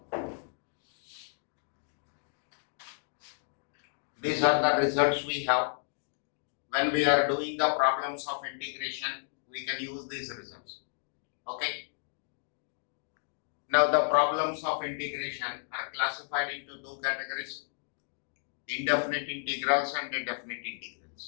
These are the results we have. When we are doing the problems of integration, we can use these results. Okay. Now the problems of integration are classified into two categories: indefinite integrals and definite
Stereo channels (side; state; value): right; silent; digital silence